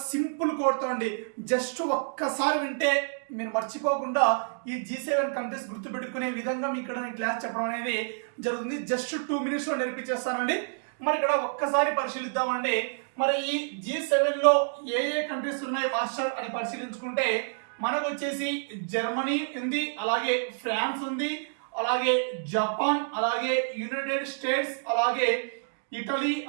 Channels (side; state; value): left; silent; digital silence